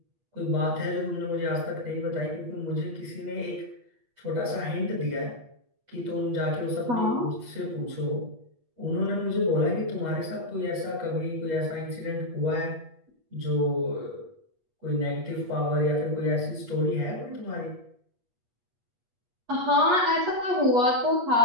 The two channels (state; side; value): late; left; 8.4 ms